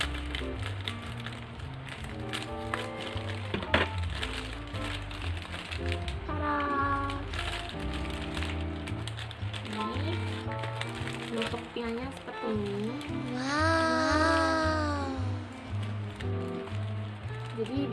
Bentuk pianya seperti ini. Wow. Jadi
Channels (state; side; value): identical; both; correlation 1.00